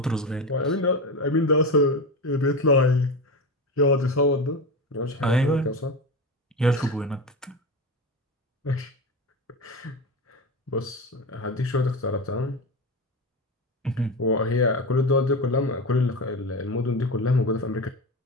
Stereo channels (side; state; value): both; normal; correlation 0.22